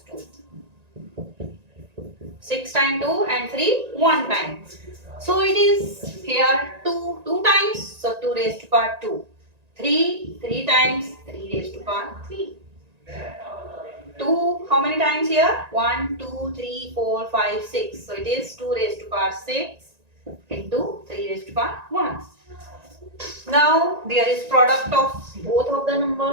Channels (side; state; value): left; late; 1.9 ms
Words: 2. 6 times 2 and 3, 1 time. So it is here 2 times, so 2 raised to power 2. 3 times, 3 raised to power 3. 2, how many times here? 1, 2, 3, 4, 5, 6. So it is 2 raised to power 6 into 3 raised to power 1. Now there is product of both of the